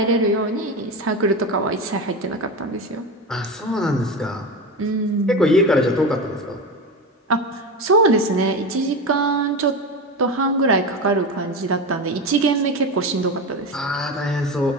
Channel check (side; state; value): both; normal; correlation 0.22